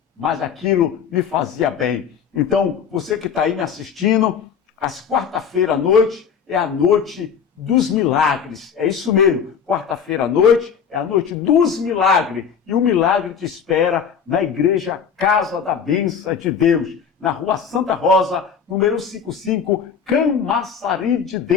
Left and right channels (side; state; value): right; quieter; 7.1 dB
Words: mas aquilo me fazia bem. Então, você que está aí me assistindo, às quarta-feira à noite é a noite dos milagres. É isso mesmo, quarta-feira à noite é a noite dos milagres. E o milagre te espera na igreja Casa da Bênção de Deus, na Rua Santa Rosa, número 55, Camaçari de